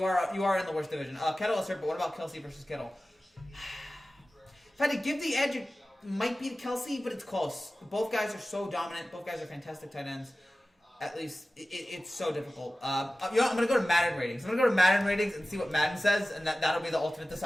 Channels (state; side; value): normal; both; correlation 0.96